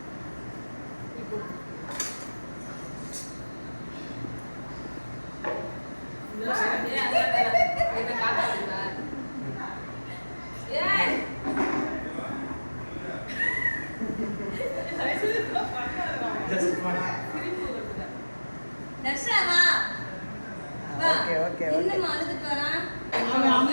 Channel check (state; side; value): inverted; both; correlation -1.00